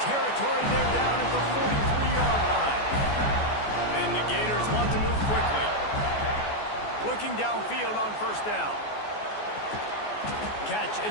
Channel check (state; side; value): late; right; 14 ms